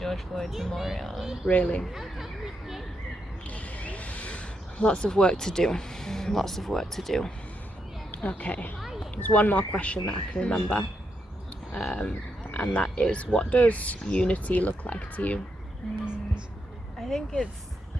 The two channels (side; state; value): both; normal; correlation 0.81